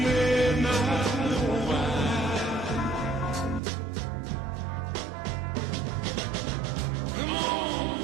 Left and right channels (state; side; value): drops out; left; at 3.6 s